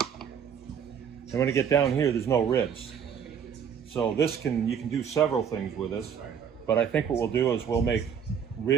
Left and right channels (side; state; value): left; quieter; 7.6 dB